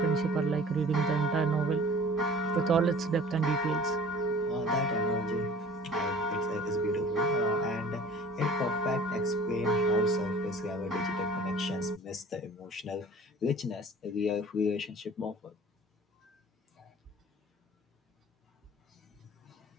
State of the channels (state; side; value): normal; both; correlation 0.46